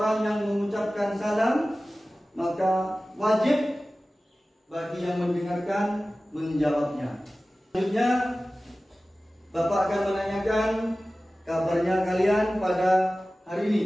yang mengucapkan salam, maka wajib bagi yang mendengarkan menjawabnya. Selanjutnya, Bapak akan menanyakan kabarnya kalian pada hari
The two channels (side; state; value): both; normal; correlation 0.96